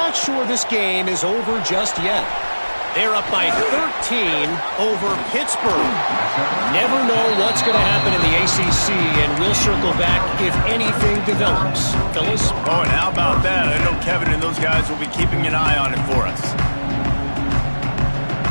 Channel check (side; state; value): both; inverted; correlation -1.00